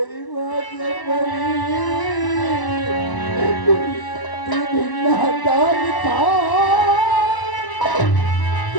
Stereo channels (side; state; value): right; late; 1.0 ms